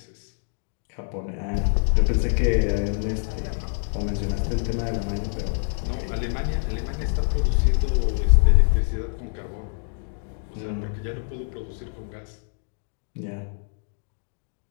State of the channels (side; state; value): right; silent; digital silence